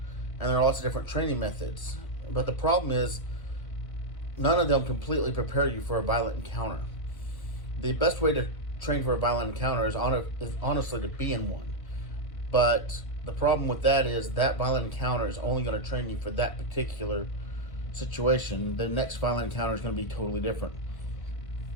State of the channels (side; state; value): right; late; 1.7 ms